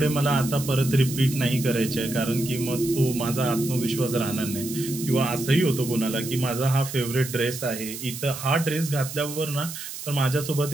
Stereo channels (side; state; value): right; noise; hiss, 9 dB below the sound